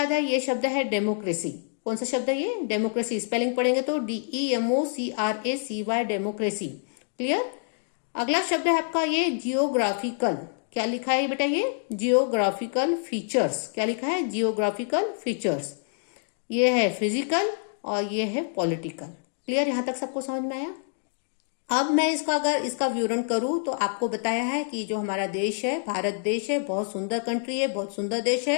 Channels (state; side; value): silent; right; digital silence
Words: है ये शब्द है डेमोक्रेसी। कौन सा शब्द है ये? डेमोक्रेसी। स्पेलिंग पढ़ेंगे तो DEMOCRACY, डेमोक्रेसी। क्लियर? अगला शब्द है आपका ये जियोग्राफिकल। क्या लिखा है बेटा? ये जियोग्राफिकल फीचर्स। क्या लिखा है? Geographical features. ये है फिजिकल और ये है पॉलिटिकल। क्लियर? यहां तक सबको समझ में आया? अब मैं अगर इसका विवरण करूं तो आपको बताया है कि जो हमारा देश है, भारत देश है, बहुत सुंदर कंट्री है, बहुत सुंदर देश